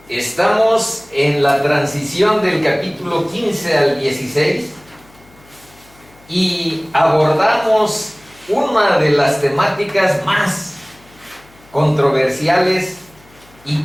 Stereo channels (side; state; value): left; noise; hum, 28 dB below the sound